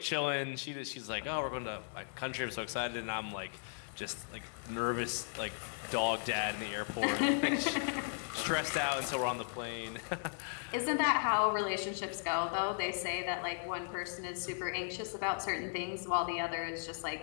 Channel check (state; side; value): silent; right; 53 dB below the other